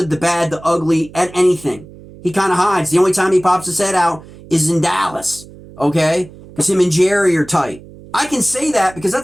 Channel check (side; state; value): right; noise; hum, 20 dB below the sound